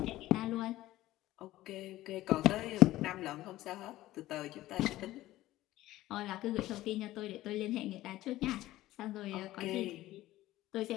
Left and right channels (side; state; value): right; quieter; 15.9 dB